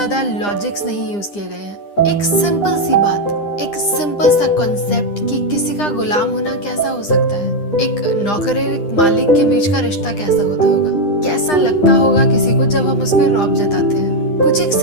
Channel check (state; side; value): late; right; 9.9 ms